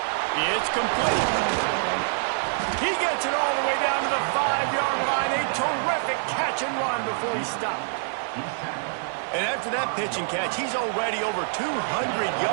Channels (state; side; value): silent; left; digital silence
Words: It's complete. He gets it all the way down to the 5-yard line. A terrific catch and run before he stopped. And after that pitch and catch, he's already over 200